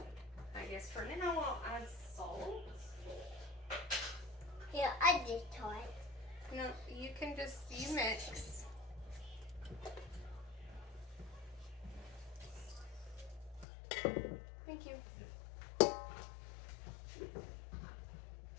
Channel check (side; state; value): right; drops out; at 13.7 s